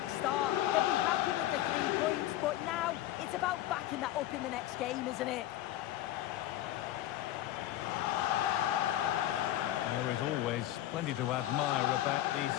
start. They'll be happy with the 3 points, but now it's about backing that up in the next game, isn't it? There is always plenty to admire about the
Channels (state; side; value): quieter; right; 13.8 dB